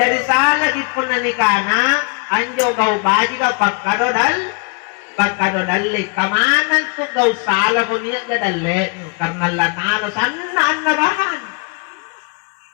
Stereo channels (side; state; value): right; quieter; 34.5 dB